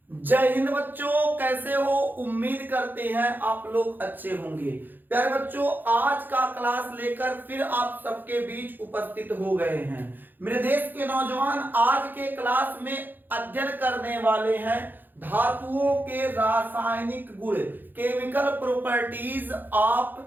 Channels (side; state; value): left; late; 0.089 ms